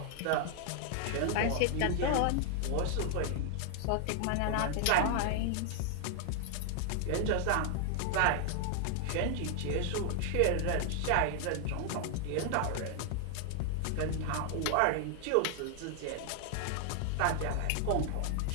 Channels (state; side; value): different; both; correlation 0.00